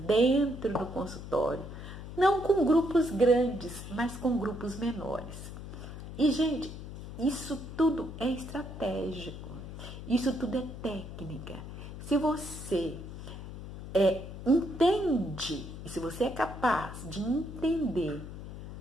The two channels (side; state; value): left; noise; hum, 10 dB below the sound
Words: do consultório, não com grupos grandes, mas com grupos menores. E, gente, isso tudo é estratégico, isso tudo é técnica. Se você entende, se você é capaz de entender